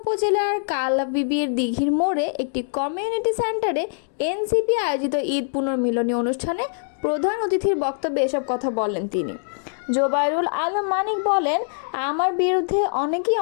কালাবিবির দিঘির মোড়ে একটি কমিউনিটি সেন্টারে এনসিপি আয়োজিত ঈদ পুনর্মিলনী অনুষ্ঠানে প্রধান অতিথির বক্তব্যে এসব কথা বলেন তিনি। জোবাইরুল আলম মানিক বলেন, আমার বিরুদ্ধে অনেকেই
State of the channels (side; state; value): right; silent; digital silence